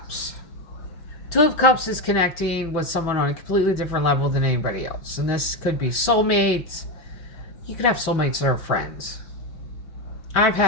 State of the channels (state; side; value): late; right; 6.0 ms